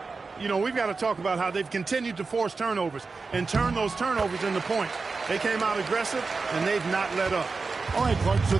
You know, we've got to talk about how they've continued to force turnovers and turn those turnovers into points. They came out aggressive, and they've not let up. All right, Clark, so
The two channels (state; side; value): quieter; left; 4.3 dB